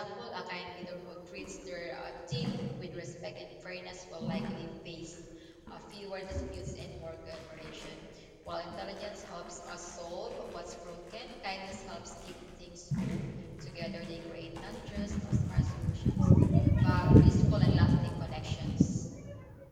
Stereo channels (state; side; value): identical; both; correlation 1.00